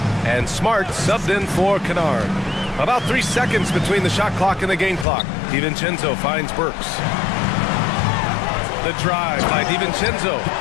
And Smart subbed in for Kennard. About 3 seconds between the shot clock and the game clock. DiVincenzo finds Burks. The drive by DiVincenzo.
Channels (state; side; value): drops out; right; at 5.1 s